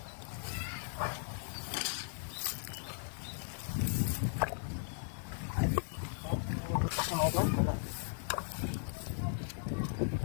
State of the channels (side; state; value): right; silent; digital silence